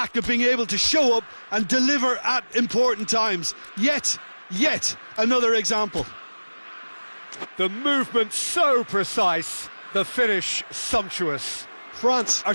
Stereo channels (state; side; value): inverted; both; correlation -1.00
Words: of being able to show up and deliver at important times. Yet another example. The movement so precise, the finish sumptuous. France are